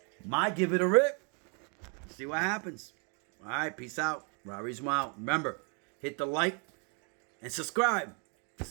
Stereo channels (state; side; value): quieter; left; 37.2 dB